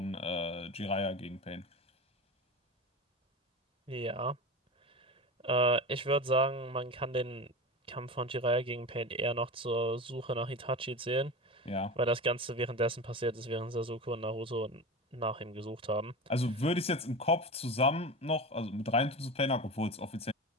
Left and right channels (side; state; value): both; normal; correlation 0.27